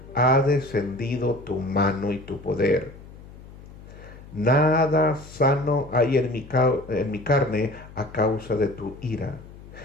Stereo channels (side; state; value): left; noise; hum, 18 dB below the sound